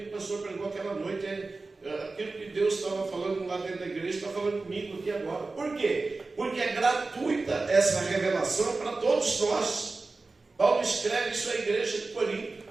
que o pastor pregou aquela noite. Aquilo que Deus estava falando lá dentro da igreja, está falando comigo aqui agora. Por quê? Porque é gratuita essa revelação para todos nós. Paulo escreve isso à igreja de Corinto.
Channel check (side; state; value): left; quieter; 3.6 dB